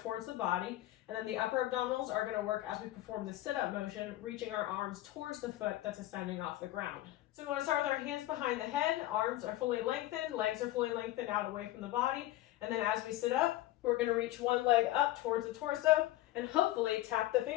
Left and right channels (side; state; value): right; quieter; 15.8 dB